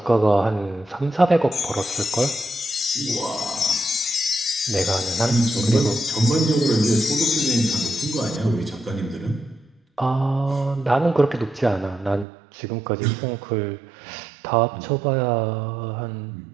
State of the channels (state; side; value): drops out; left; at 12.2 s